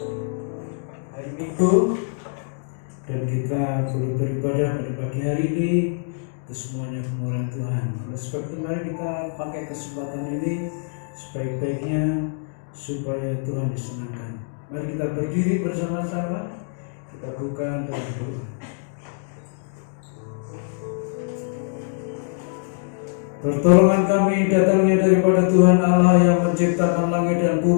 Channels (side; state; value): right; silent; digital silence